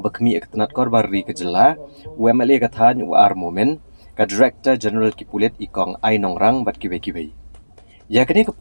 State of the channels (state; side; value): inverted; both; correlation -1.00